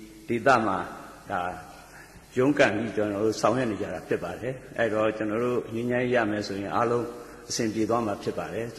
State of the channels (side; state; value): both; identical; correlation 1.00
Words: ဒေသမှာဒါရုန်းကန်ပြီးကျွန်တော်တို့ဆောင်ရွက်နေကြတာဖြစ်ပါတယ်အဲ့တော့ကျွန်တော်တို့ငြိမ်းချမ်းရမယ်ဆိုရင်အားလုံးအဆင်ပြေသွားမှာဖြစ်ပါတယ်က